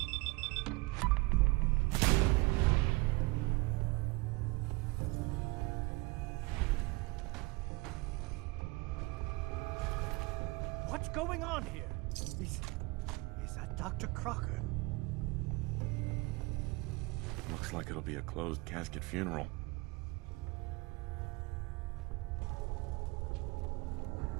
What's going on here? Is that Dr. Crocker? Looks like it'll be a closed casket funeral.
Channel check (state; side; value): quieter; left; 24.2 dB